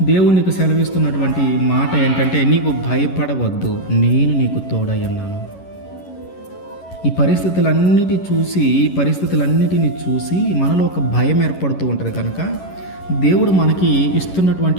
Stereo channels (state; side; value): late; right; 11 ms